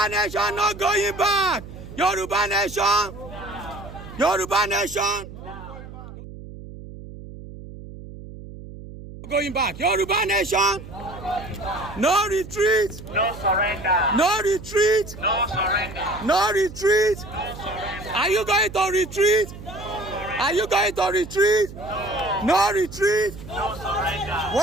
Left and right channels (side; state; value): right; noise; hum, 14 dB below the sound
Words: nation not going back! Yoruba nation! Yoruba nation! Going back. Yoruba nation! No retreat! No surrender. No retreat! No surrender. No retreat! No surrender. Are you going to retreat? Are you going to retreat? No retreat. No surrender.